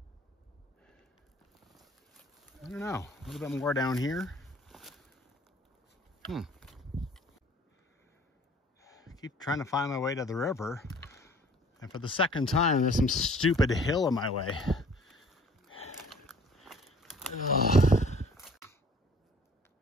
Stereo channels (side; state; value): both; normal; correlation 0.52